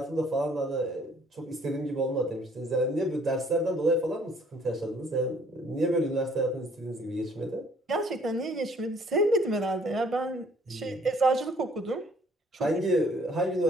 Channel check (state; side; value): normal; both; correlation 0.60